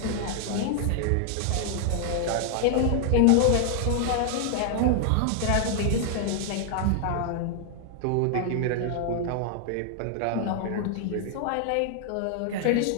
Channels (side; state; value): both; different; correlation 0.00